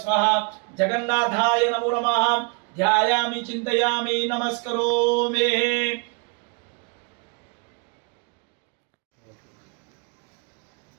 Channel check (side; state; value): left; quieter; 33.8 dB